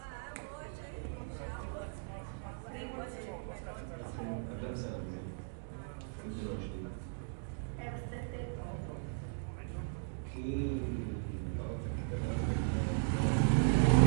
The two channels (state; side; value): silent; left; digital silence